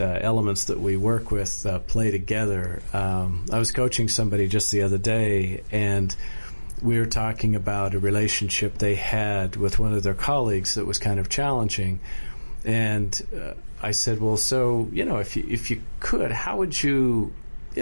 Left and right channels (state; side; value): inverted; both; correlation -1.00